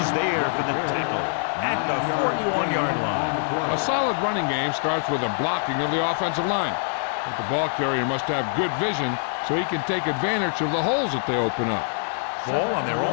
there for the tackle at the 41-yard line. A solid running game starts with a blocking of the offensive line. But the ball carrier must have good vision so he can take advantage of the holes that they open up. Ball on their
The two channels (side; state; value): right; silent; 60 dB below the other